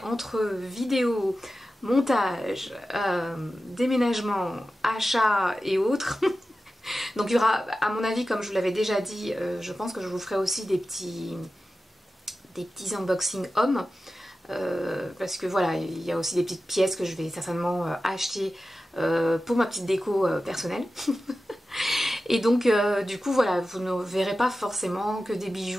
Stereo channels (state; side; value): normal; both; correlation 0.94